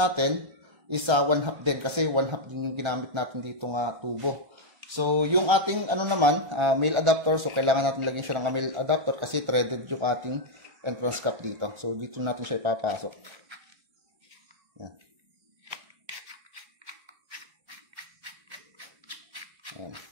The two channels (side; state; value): left; late; 1.3 ms